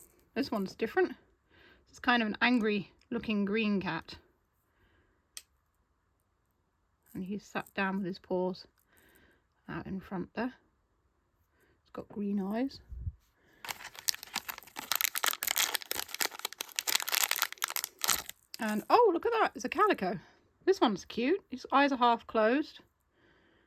This one's different. It's kind of an angry looking green cat. And he's sat down with his paws out in front there. It's got green eyes. And oh, look at that, it's a calico. This one's cute. His eyes are half closed.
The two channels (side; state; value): both; identical; correlation 1.00